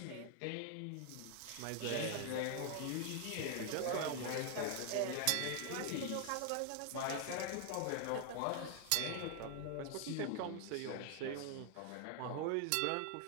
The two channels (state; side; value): different; both; correlation 0.00